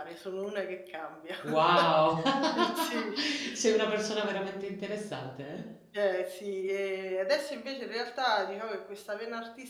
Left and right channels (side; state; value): both; identical; correlation 1.00